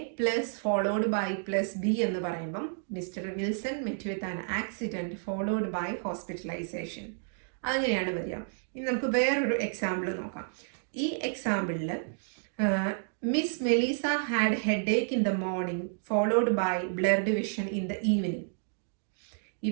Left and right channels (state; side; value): silent; left; digital silence